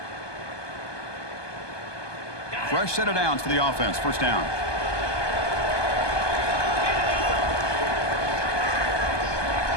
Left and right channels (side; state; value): right; late; 1.2 ms